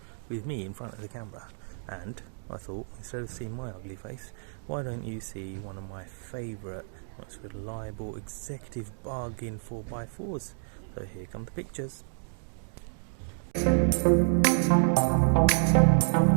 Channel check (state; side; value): silent; left; digital silence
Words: with me in front of the camera, and I thought instead of seeing my ugly face, why don't you see one of my favourite, most reliable executive bargain 4x4s. So here come the pictures.